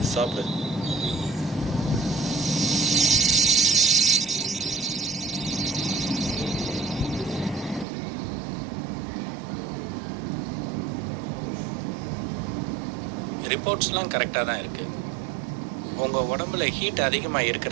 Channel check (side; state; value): left; drops out; at 7.9 s